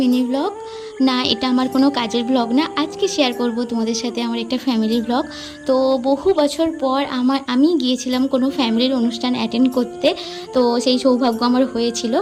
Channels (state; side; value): identical; both; correlation 1.00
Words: mini blog. না, এটা আমার কোনো কাজের ব্লগ না। আজকে শেয়ার করব তোমাদের সাথে আমার একটা ফ্যামিলির ব্লগ। তো বহু বছর পর আমি গিয়েছিলাম কোনো ফ্যামিলির অনুষ্ঠান অ্যাটেন্ড করতে। তো সেই সৌভাগ্য আমার হয়েছিল